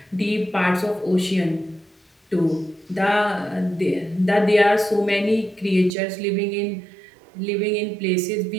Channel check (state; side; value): drops out; left; at 5.9 s